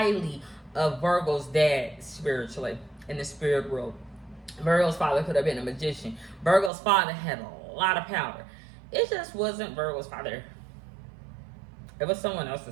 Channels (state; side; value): drops out; left; at 6.7 s